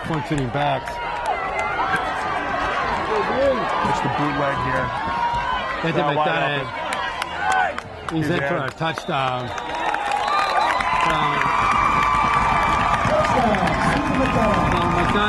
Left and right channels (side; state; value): both; identical; correlation 1.00